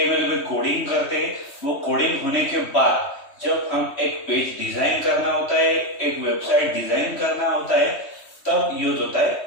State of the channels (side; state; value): right; late; 3.2 ms